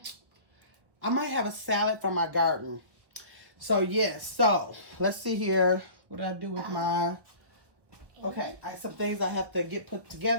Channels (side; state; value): left; late; 1.2 ms